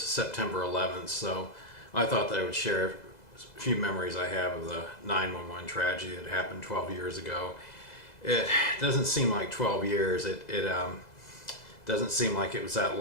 11th, so I thought that I would share a few memories I have of the 9/11 tragedy that happened 12 years ago. It doesn't seem like 12 years. It doesn't seem like it was that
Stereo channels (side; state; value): right; late; 2.0 ms